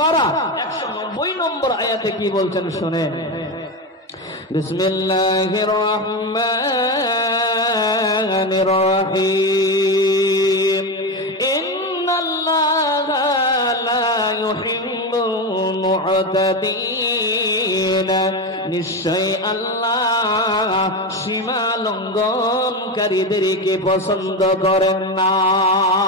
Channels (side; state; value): both; normal; correlation 0.17